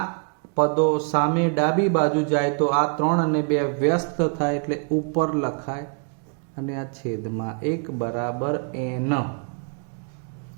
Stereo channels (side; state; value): left; quieter; 39.4 dB